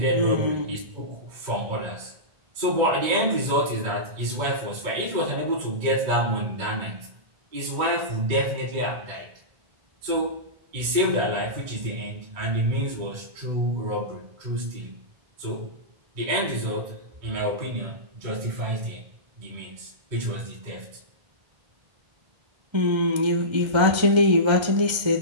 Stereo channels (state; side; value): late; left; 1.3 ms